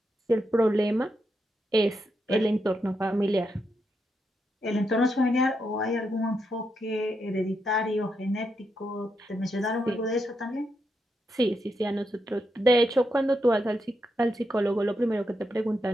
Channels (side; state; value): both; normal; correlation 0.83